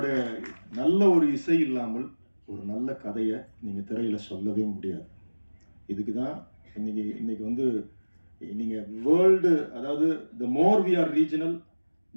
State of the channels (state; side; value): inverted; both; correlation -1.00